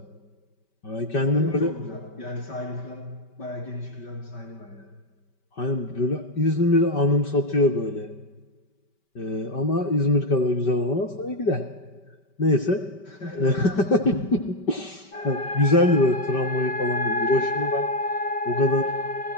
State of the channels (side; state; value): right; late; 5.2 ms